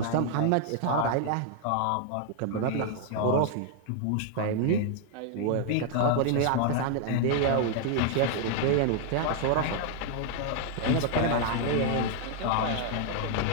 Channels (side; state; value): both; different; correlation 0.00